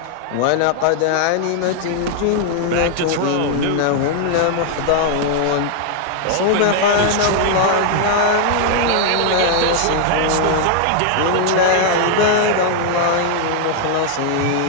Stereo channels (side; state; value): both; different; correlation -0.01